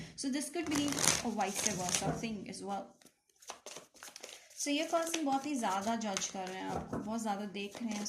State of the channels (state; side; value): identical; both; correlation 1.00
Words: So this could be a vice versa thing as well. So ये पर्सन बहुत ही ज़्यादा जज कर रहे हैं आपको, बहुत ज़्यादा देख रहे हैं